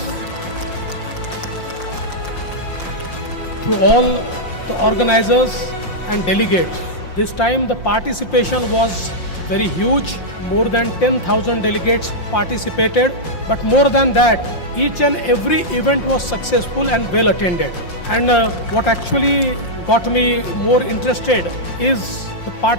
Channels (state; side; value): late; right; 5.7 ms